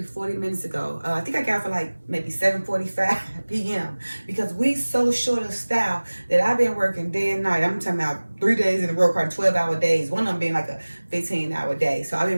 40 minutes ago. I think I got for like maybe 7:45 p.m. because we so short of staff that I've been working day and night. I'm talking about 3 days in a row, probably 12-hour days. One of them being like a 15-hour day. So I've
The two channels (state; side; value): inverted; both; correlation -1.00